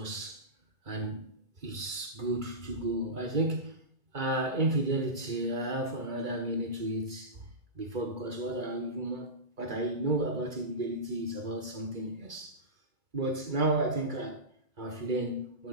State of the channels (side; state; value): left; late; 2.3 ms